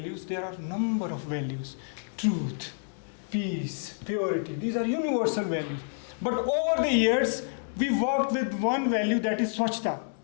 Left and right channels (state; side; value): silent; right; digital silence